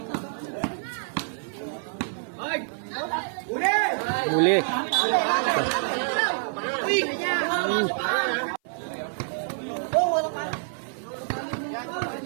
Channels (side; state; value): left; silent; 56 dB below the other